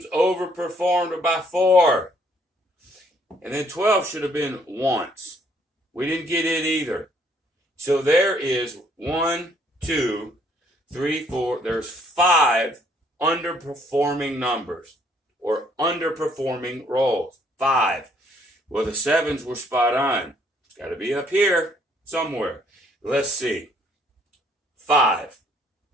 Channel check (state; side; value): normal; both; correlation 0.65